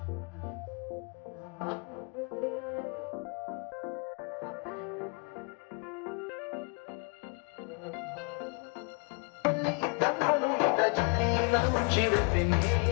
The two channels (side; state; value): right; quieter; 33.4 dB